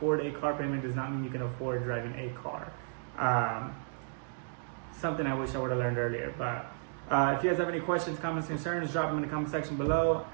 a car payment does not mean you can afford driving a car. Something I wish I would have learned earlier. But if you guys have any questions, comments, concerns, drop them in the comment section below,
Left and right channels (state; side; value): silent; left; digital silence